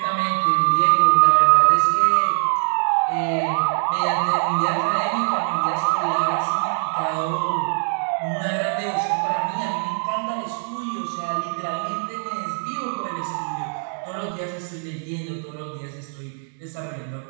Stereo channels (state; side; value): silent; left; 64 dB below the other